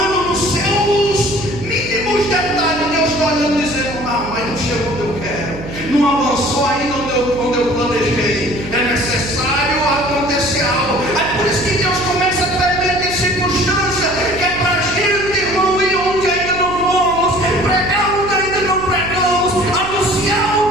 nos seus mínimos detalhes. Deus está olhando e dizendo: mas não chegou onde eu quero, não avançou ainda onde eu planejei. É necessário acontecer algo. É por isso que Deus começa a permitir circunstância, que é para a gente, irmão, ir onde ainda não fomos, pregar onde ainda não pregamos, anunciar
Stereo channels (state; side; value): noise; right; hum, 11 dB below the sound